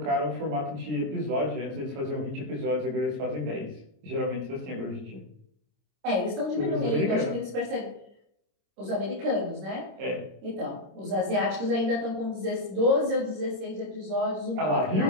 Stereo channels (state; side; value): late; left; 26 ms